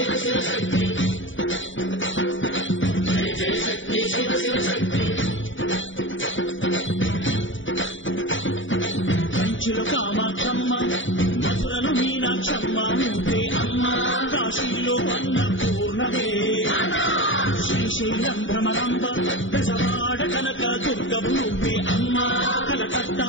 కంచిలో కామాక్షమ్మ, మధురలు మీనాక్షమ్మ నువ్వే అమ్మ. కాశీలో అన్నపూర్ణవే, శ్రీశైలం భ్రమరాంబ, దశవాడ కనక దుర్గవు నువ్వే అమ్మ. కలకత్తా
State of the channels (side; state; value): right; late; 0.56 ms